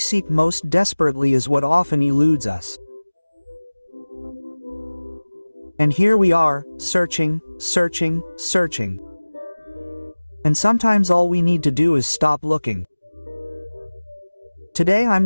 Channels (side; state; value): both; inverted; correlation -1.00